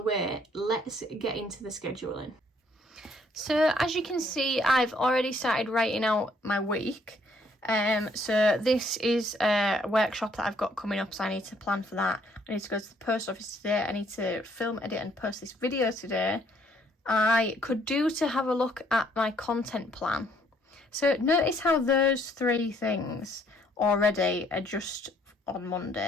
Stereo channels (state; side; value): normal; both; correlation 0.66